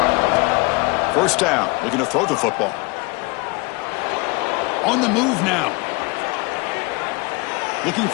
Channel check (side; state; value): right; quieter; 26.3 dB